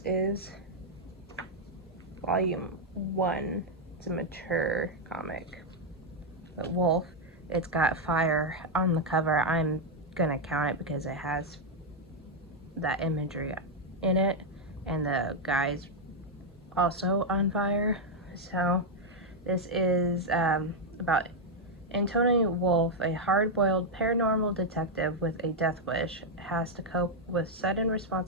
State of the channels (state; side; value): normal; both; correlation 0.00